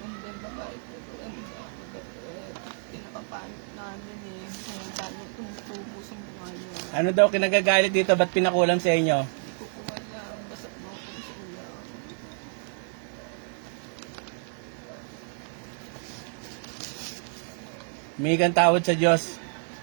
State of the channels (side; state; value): left; silent; 59 dB below the other